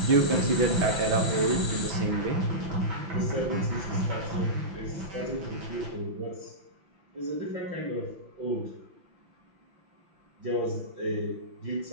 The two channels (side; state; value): left; late; 5.9 ms